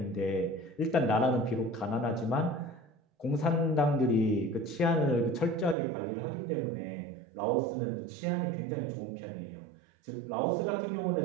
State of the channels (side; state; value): left; drops out; at 5.8 s